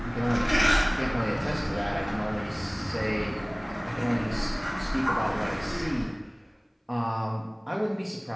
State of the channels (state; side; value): identical; both; correlation 1.00